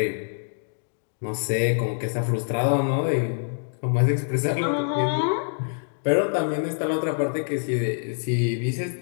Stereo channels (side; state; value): right; silent; digital silence